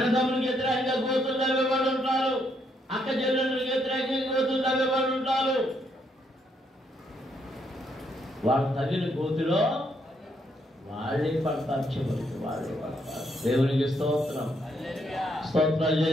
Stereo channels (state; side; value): normal; both; correlation 0.74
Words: వ్యతిరేకంగా గోతులు తవ్వేవాళ్ళు ఉంటారు. అక్క చెల్లెళ్ళకి వ్యతిరేకంగా గోతులు తవ్వేవాళ్ళు ఉంటారు. వాళ్ళు తగిన గోతులో వాళ్ళే పడతారు, చివరికి వాళ్ళే పడతారు. దేవునికి స్తోత్రం. స్తోత్రాలు